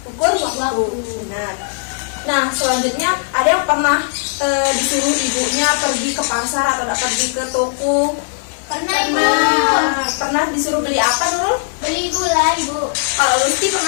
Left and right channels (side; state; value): right; silent; 67 dB below the other